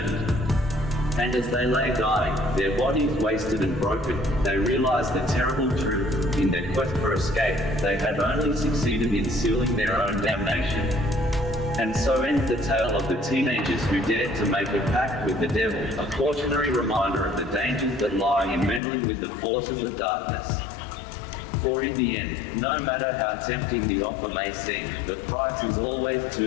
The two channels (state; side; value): drops out; right; at 18.8 s